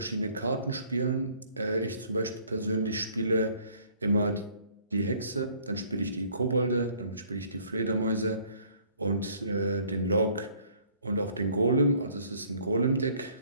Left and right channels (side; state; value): both; inverted; correlation -0.59